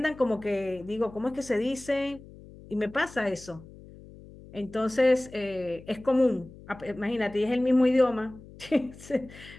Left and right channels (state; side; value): noise; left; hum, 19 dB below the sound